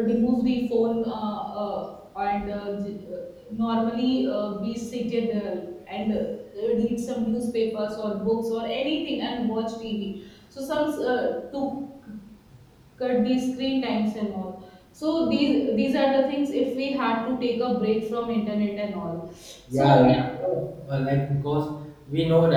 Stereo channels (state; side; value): identical; both; correlation 1.00